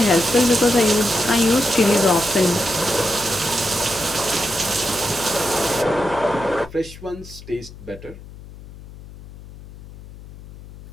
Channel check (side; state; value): left; noise; hum, 17 dB below the sound